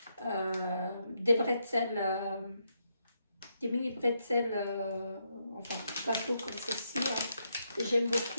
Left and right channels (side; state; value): both; inverted; correlation -0.79